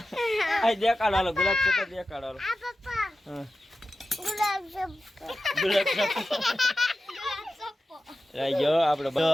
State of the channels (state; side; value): normal; both; correlation 0.93